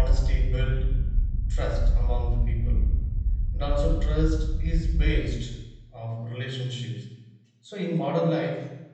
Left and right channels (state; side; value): identical; both; correlation 1.00